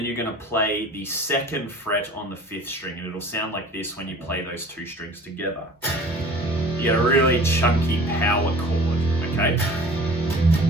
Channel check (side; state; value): both; normal; correlation 0.45